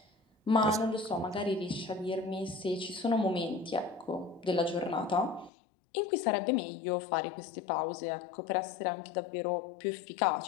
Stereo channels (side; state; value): right; drops out; at 5.5 s